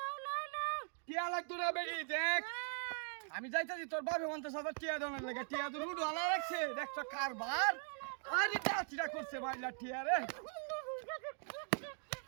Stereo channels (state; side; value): silent; left; 50 dB below the other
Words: টিয়া লাগতো না বেড়ি দেখ আমি যাইতাছি তোর বাপে মন্তে সবার টিয়া দনের লাগে টিয়া তো রুড ওয়ালা রাখছে দেখছ কারবার আরে ডাচিটা করছে মাইলা টিয়া রে